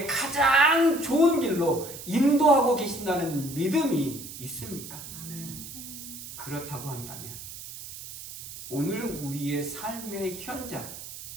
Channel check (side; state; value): right; noise; hiss, 12 dB below the sound